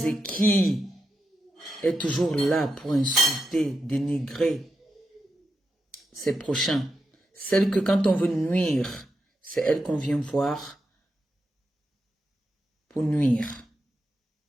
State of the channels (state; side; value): normal; both; correlation 0.87